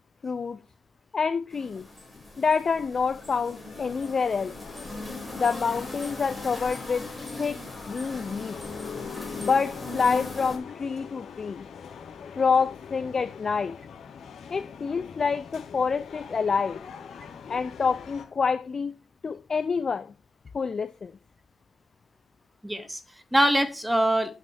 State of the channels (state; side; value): quieter; right; 3.8 dB